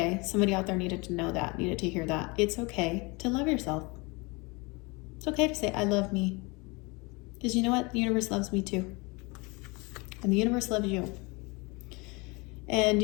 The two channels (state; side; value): quieter; right; 27.1 dB